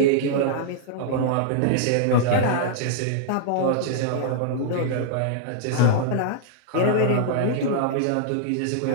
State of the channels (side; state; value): both; different; correlation -0.01